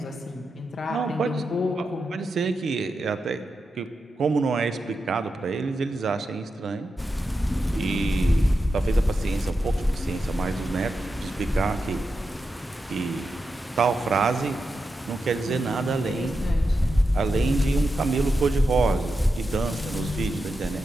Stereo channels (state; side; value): normal; both; correlation 0.89